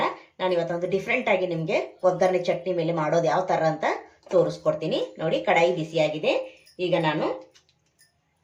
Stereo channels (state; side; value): identical; both; correlation 1.00